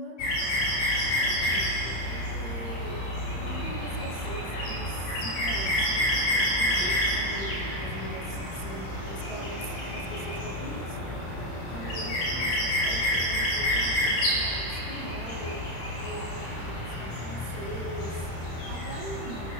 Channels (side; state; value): right; late; 30 ms